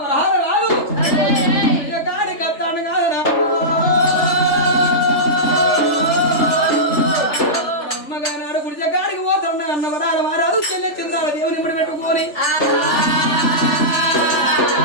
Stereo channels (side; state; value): right; late; 3.4 ms